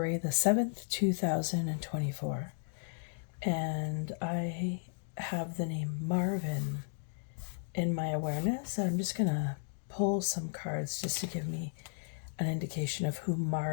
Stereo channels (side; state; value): right; silent; digital silence